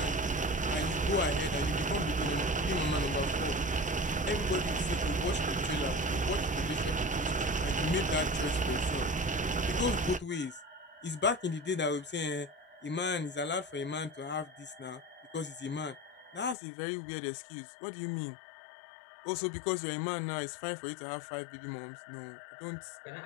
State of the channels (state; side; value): drops out; right; at 16.6 s